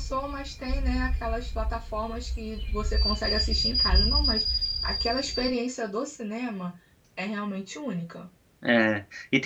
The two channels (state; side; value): identical; both; correlation 1.00